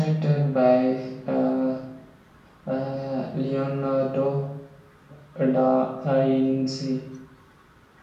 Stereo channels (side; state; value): both; identical; correlation 1.00